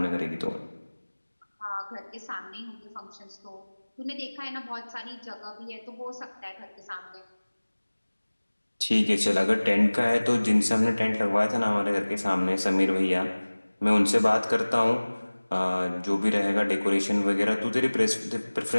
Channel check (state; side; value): inverted; both; correlation -1.00